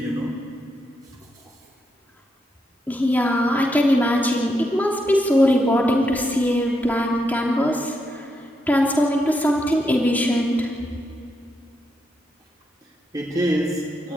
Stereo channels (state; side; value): normal; both; correlation 0.82